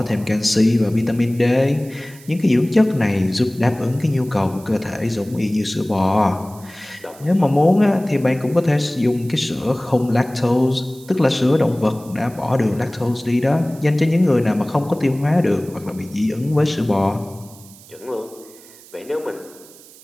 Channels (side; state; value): right; noise; hiss, 22 dB below the sound